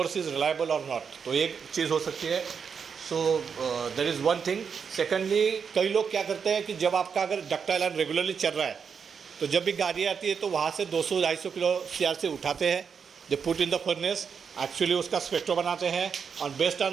is reliable और नॉट, तो एक चीज़ हो सकती है। सो that is one thing. Secondly, कई लोग क्या करते हैं कि जब आपका अगर डक्टाइल आयरन रेगुलरली चल रहा है, तो जब भी गाड़ी आती है तो वहाँ से 200-250 किलो सीआरसी उठाते हैं, they put in the furnace, actually उसका स्पेक्ट्रो बनाते हैं, और based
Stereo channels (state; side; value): quieter; left; 6.4 dB